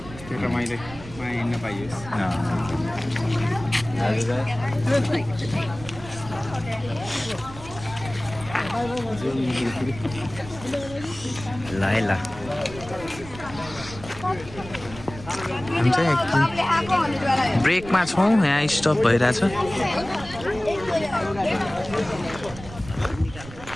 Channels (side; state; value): right; noise; rumble, 15 dB below the sound